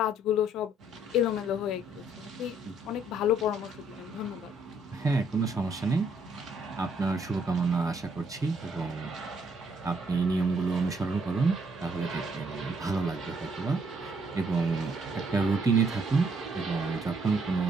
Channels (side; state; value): both; normal; correlation 0.68